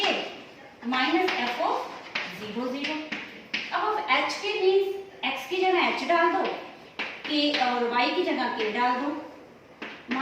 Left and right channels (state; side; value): identical; both; correlation 1.00